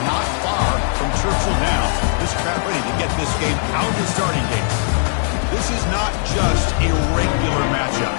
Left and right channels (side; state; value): right; silent; 67 dB below the other